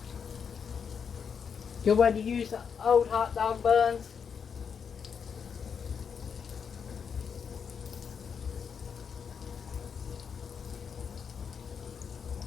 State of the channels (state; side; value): quieter; right; 6.7 dB